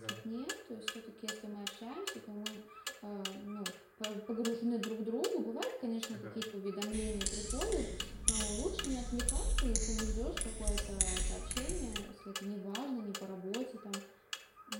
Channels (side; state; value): both; identical; correlation 1.00